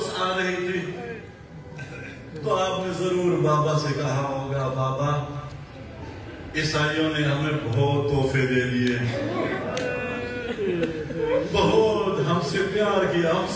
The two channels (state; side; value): identical; both; correlation 1.00